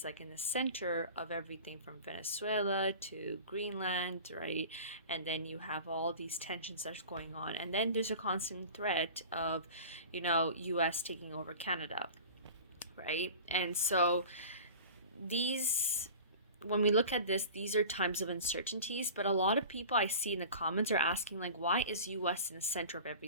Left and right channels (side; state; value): both; inverted; correlation -0.38